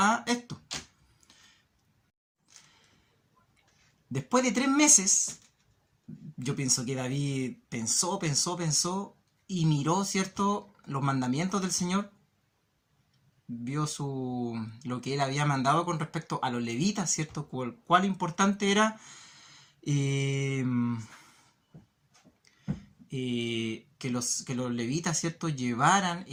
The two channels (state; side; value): identical; both; correlation 1.00